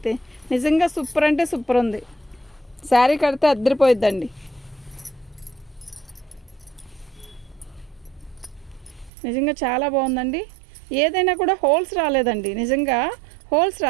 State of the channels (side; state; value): left; drops out; at 9.1 s